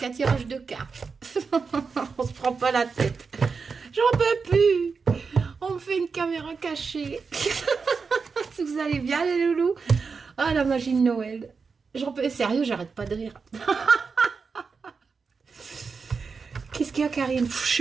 tirage de cartes. On se prend pas la tête. J'en peux plus. On me fait une caméra cachée. Vous allez bien, les loulous? Ah, la magie de Noël. J'en peux... Sérieux, j'arrête pas de rire. Qu'est-ce qu'il y a, Karine? Je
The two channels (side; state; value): left; quieter; 5.1 dB